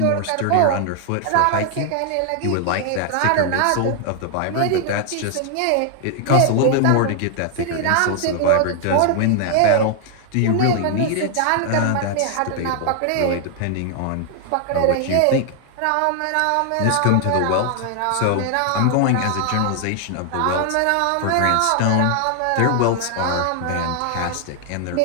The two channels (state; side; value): different; both; correlation 0.00